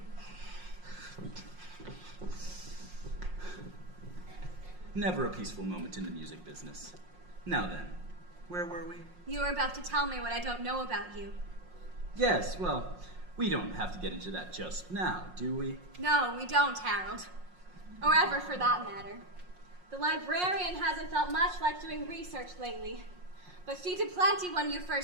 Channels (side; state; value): left; late; 5.6 ms